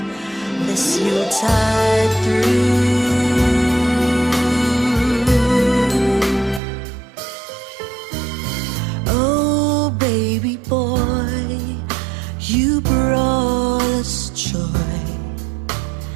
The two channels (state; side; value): drops out; left; at 6.6 s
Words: this Yuletide through. You brought us joy